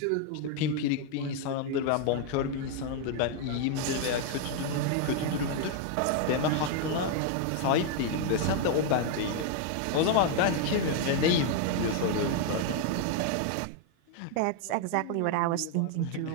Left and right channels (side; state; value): both; different; correlation 0.00